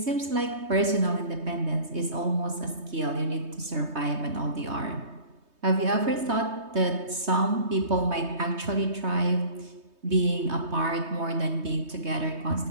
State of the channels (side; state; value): left; late; 3.2 ms